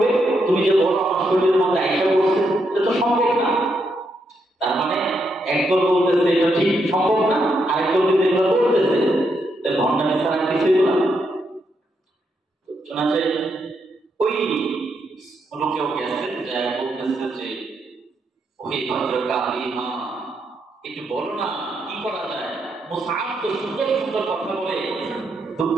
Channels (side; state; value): both; normal; correlation 0.79